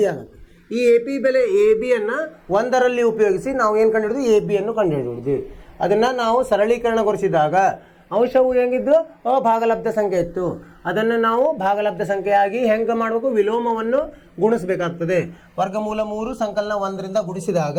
ಆಗುತ್ತೆ. ಈ ಎ ಪಿ ಬೆಲೆ ಎ ಬಿಯನ್ನು 1ರಲ್ಲಿ ಉಪಯೋಗಿಸಿ ನಾವು ಏನು ಕಂಡುಹಿಡಿದ್ವಿ? ಎ ಬಿಯನ್ನು ಕಂಡುಹಿಡಿದ್ವಿ. ಅದನ್ನು ನಾವು ಸರಳೀಕರಣಗೊಳಿಸಿದಾಗ ಅಂಶವು ಹೆಂಗಿದ್ದು? ಭಾಗಲಬ್ಧ ಸಂಖ್ಯೆ ಇತ್ತು. ಅದನ್ನು ನಾವು ಭಾಗಲಬ್ಧ ಸಂಖ್ಯೆಯಾಗಿ ಹೆಂಗೆ ಮಾಡಬೇಕು? ವಿಲೋಮವನ್ನು ಗುಣಿಸಬೇಕಾಗ್ತದೆ. ವರ್ಗಮೂಲ 3 ಸಂಕಲನ 1ರಿಂದ ಗುಣಿಸಿದಾಗ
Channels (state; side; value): identical; both; correlation 1.00